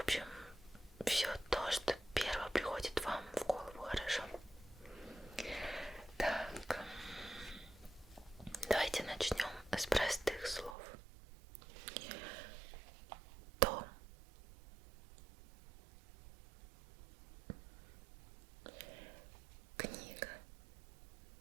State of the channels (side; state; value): left; drops out; at 10.8 s